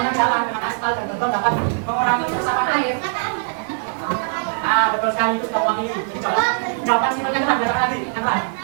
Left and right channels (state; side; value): silent; left; digital silence